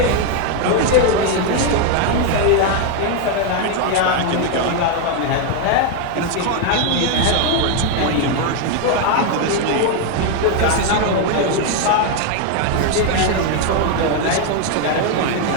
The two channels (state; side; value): different; both; correlation 0.01